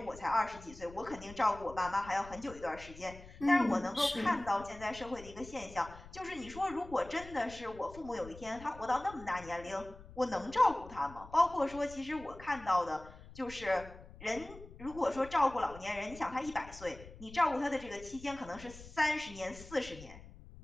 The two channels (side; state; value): left; noise; rumble, 17 dB below the sound